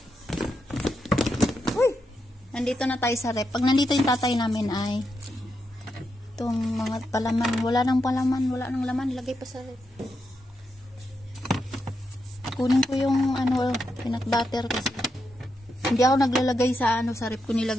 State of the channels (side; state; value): both; normal; correlation 0.84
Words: Uy! Nandito na tayo sa rep. Pag nandito yung tatay namin ay itong mga palaman. Wala nang palaman, wala nang laman. Ilagay pa sa rep. Kunin ko yung peanut butter kasi. Hindi ako naglalagay sa sa rep ko